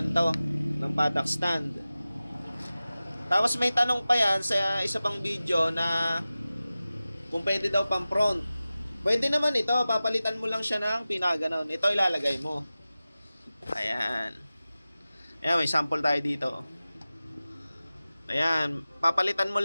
ng paddock stand. Tapos may tanong pa yan sa isa pang video na kung pwede daw pang front. Pwede naman ito, papalitan mo lang siya ng pinaganon. Ito ilalagay mo. Ayan. Ayan, may sample tayo dito. Ayan, papalitan mo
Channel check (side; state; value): both; inverted; correlation -0.96